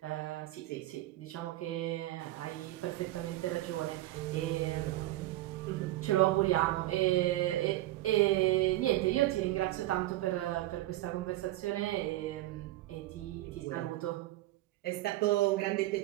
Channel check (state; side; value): quieter; left; 16.5 dB